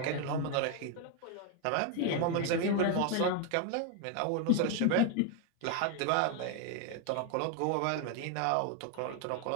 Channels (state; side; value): different; both; correlation 0.01